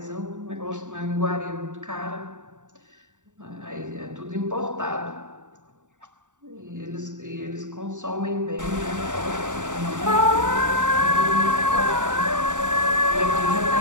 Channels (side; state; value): left; late; 0.86 ms